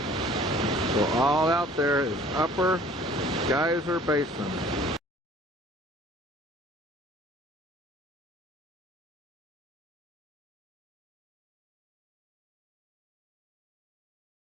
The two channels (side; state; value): both; normal; correlation 0.51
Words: So all out there is Upper Geyser Basin.